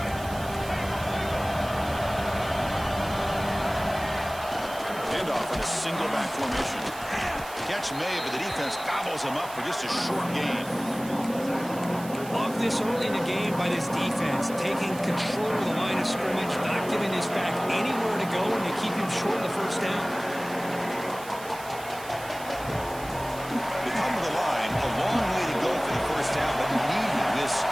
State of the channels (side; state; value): right; noise; hiss, 16 dB below the sound